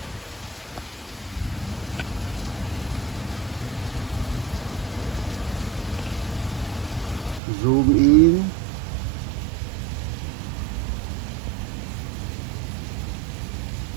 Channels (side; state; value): left; drops out; at 7.4 s